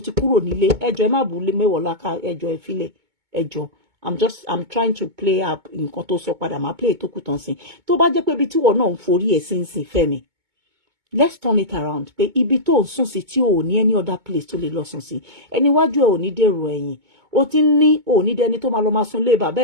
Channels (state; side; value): late; left; 2.2 ms